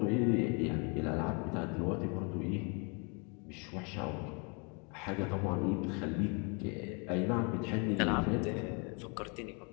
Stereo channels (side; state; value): right; quieter; 34.3 dB